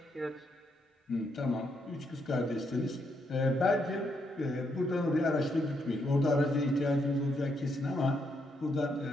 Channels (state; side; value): normal; both; correlation 0.77